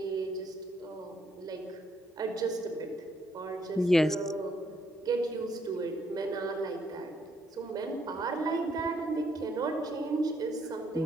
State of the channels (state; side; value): normal; both; correlation 0.72